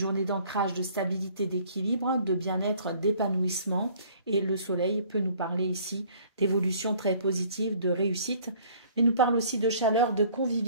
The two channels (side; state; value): both; inverted; correlation -0.56